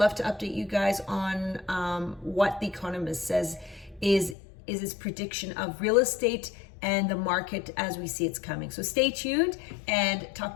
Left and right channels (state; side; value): drops out; right; at 4.4 s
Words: to update you guys on what The Economist says is its prediction of real estate and the market as we see it's coming. So stay tuned and talk